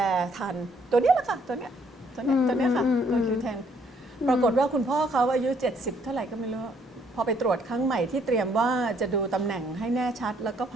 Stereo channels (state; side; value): normal; both; correlation 0.66